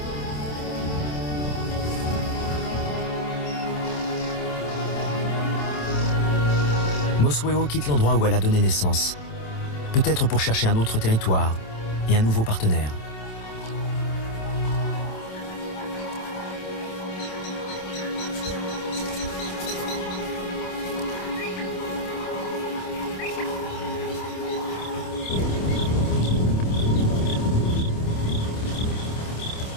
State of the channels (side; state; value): right; late; 27 ms